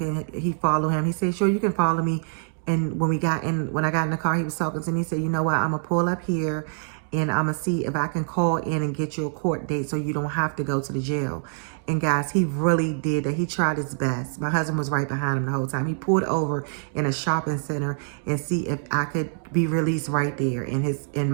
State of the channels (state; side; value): silent; left; digital silence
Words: he follow him? He said, sure, you can follow me. And when I got in the car, he was talking to me. He said, you know what, I'm going to pull up here and I'm going to see if I can call in and get you a court date so you don't have to go to the jail. And guys, he really did that. He tried his best. My husband was right behind him the whole time. He pulled over in a shopping center and see if I could be released right there. And